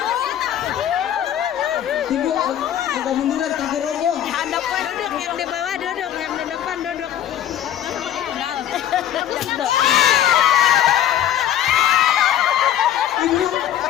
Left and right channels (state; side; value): quieter; right; 11.0 dB